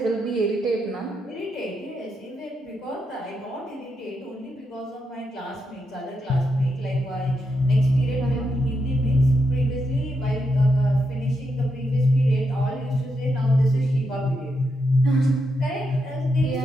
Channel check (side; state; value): both; normal; correlation 0.83